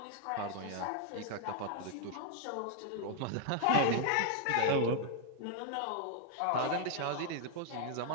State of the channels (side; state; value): both; different; correlation 0.00